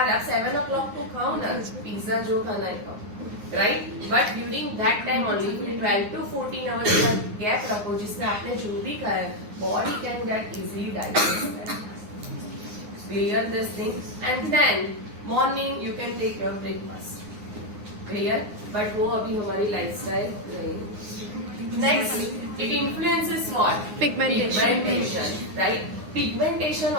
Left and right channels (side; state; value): left; late; 9.6 ms